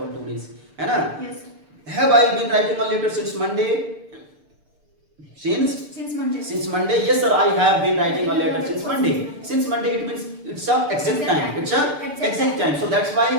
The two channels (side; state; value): left; late; 6.8 ms